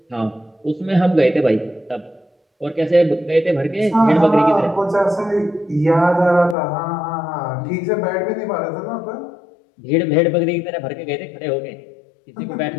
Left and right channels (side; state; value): right; drops out; at 6.6 s